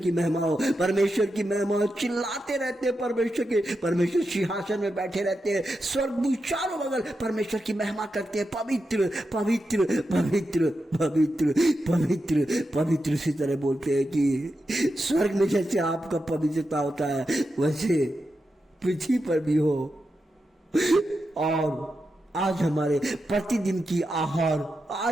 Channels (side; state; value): both; normal; correlation 0.88